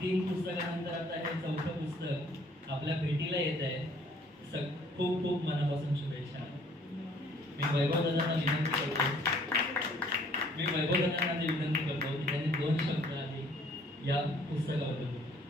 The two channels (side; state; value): both; normal; correlation 0.59